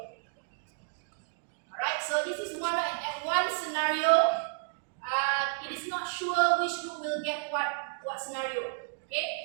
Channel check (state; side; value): silent; left; digital silence